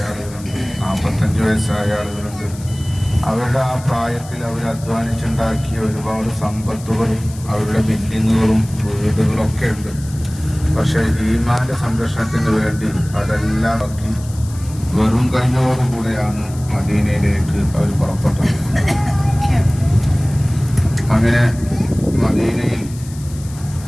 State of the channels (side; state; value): left; noise; hiss, 19 dB below the sound